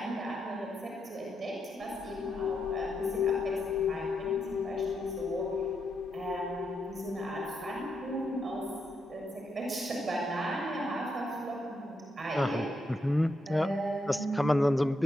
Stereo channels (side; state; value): both; normal; correlation 0.82